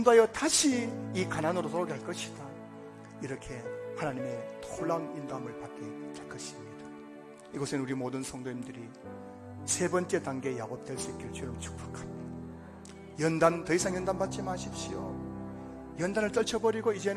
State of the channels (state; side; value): identical; both; correlation 1.00